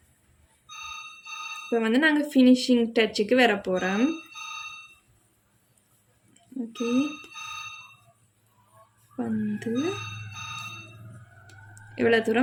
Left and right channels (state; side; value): identical; both; correlation 1.00